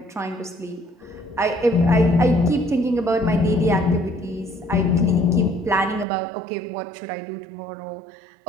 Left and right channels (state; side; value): drops out; left; at 6.1 s